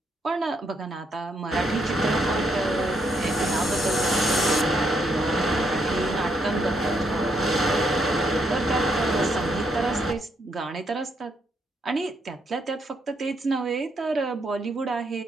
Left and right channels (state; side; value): normal; both; correlation 0.75